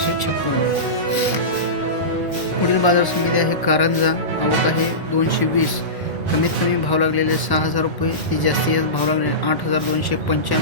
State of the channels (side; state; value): right; late; 1.0 ms